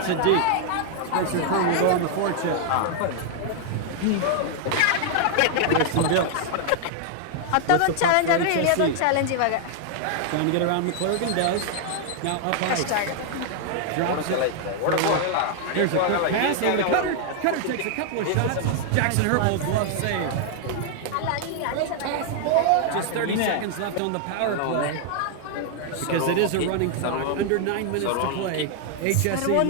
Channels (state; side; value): different; both; correlation 0.00